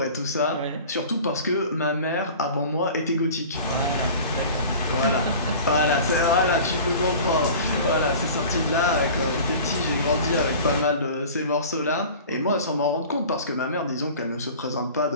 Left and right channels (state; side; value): inverted; both; correlation -0.40